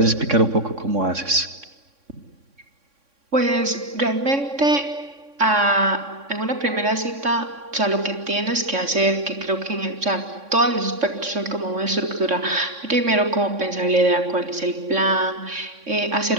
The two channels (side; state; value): left; late; 3.6 ms